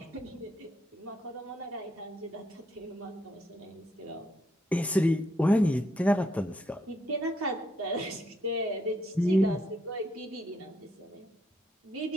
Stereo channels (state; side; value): normal; both; correlation 0.74